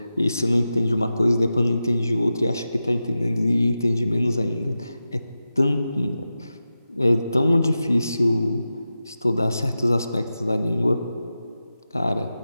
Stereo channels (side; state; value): both; inverted; correlation -0.92